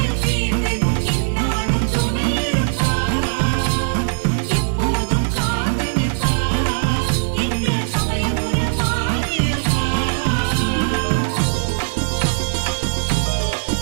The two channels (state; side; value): silent; left; 66 dB below the other